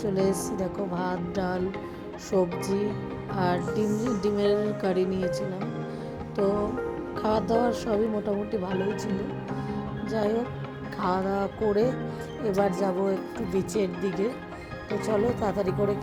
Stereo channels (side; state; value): both; identical; correlation 1.00